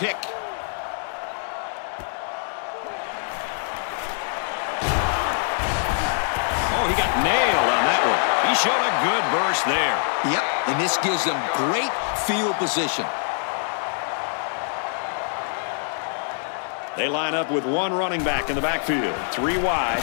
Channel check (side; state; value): right; silent; 62 dB below the other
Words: Oh, he got nailed on that one. He showed a good burst there. Yep, and this gives them great field position. They line up with one running back in the backfield. 3 wide.